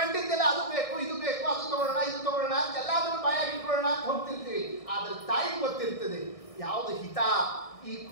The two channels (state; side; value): late; right; 1.6 ms